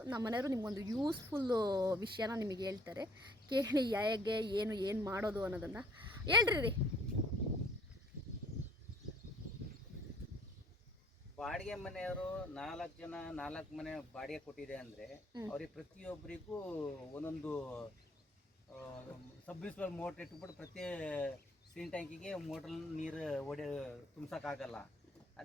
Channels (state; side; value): normal; both; correlation 0.58